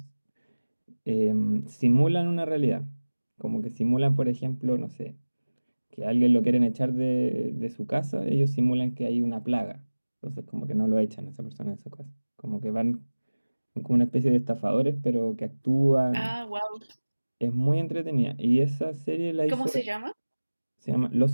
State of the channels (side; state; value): both; inverted; correlation -1.00